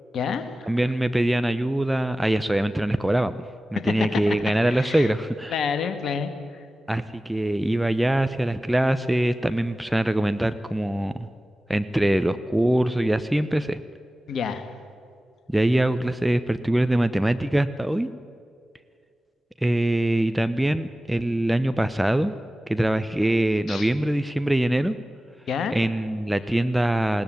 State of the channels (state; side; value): normal; both; correlation 0.96